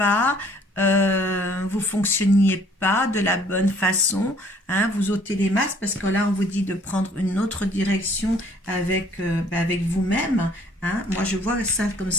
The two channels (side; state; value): both; normal; correlation 0.58